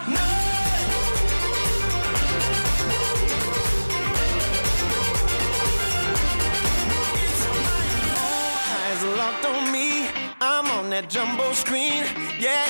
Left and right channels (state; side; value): inverted; both; correlation -1.00